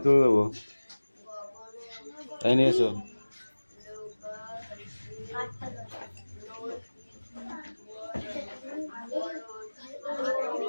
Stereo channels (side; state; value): both; inverted; correlation -1.00